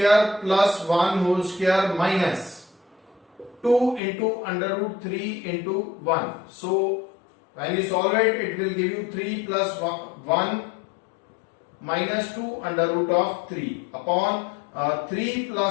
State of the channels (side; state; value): right; drops out; at 4.0 s